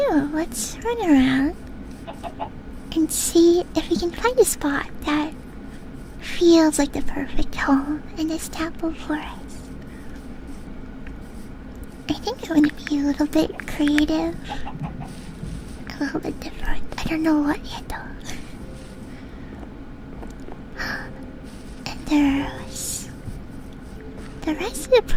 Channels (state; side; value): identical; both; correlation 1.00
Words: know, let's run around and see if we can find a spot that feels like the perfect home in this apple forest. I think I want to be a little bit creative, a little bit different. I don't know what yet though. And there's the rest of the